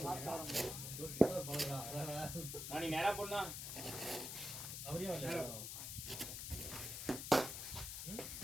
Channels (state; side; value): noise; left; hiss, 5 dB below the sound